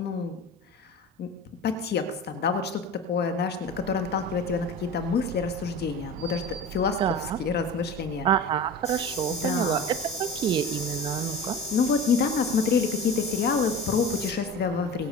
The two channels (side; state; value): both; normal; correlation 0.33